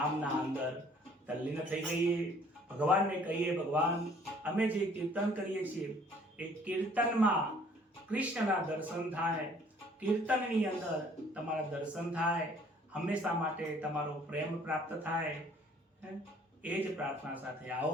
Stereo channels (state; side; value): normal; both; correlation 0.57